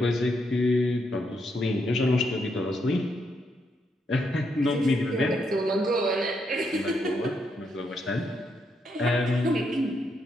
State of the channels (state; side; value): normal; both; correlation 0.78